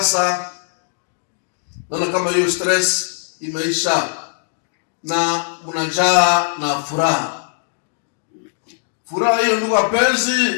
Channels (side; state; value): right; silent; digital silence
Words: naona kama hiyo stress imeisha na mnajaa na furaha. Furaha hiyo, ndugu